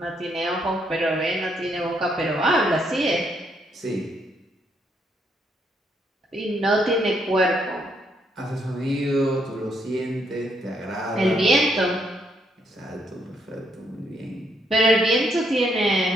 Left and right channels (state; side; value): normal; both; correlation 0.74